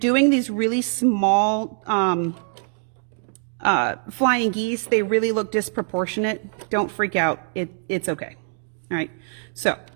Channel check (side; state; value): left; silent; 63 dB below the other